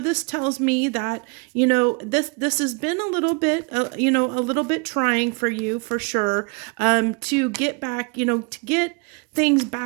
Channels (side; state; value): left; quieter; 32.4 dB